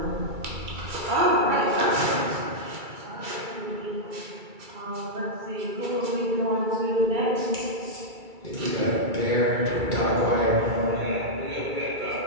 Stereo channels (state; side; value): late; left; 2.3 ms